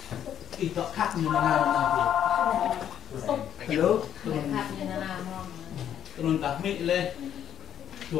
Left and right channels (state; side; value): quieter; right; 10.0 dB